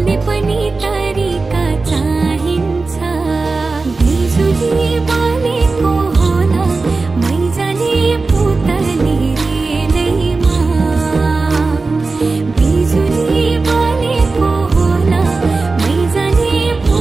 पनि तरिका चाहिन्छ बिजुली बोलेको होला मै जाने पुतली रेलैमा बिजुली बोलेको होला मै जाने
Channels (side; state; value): left; quieter; 3.8 dB